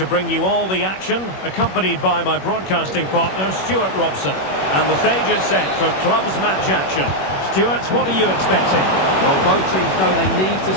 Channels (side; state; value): right; late; 21 ms